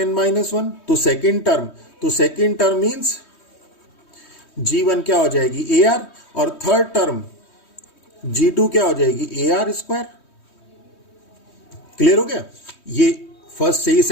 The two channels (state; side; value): late; right; 3.2 ms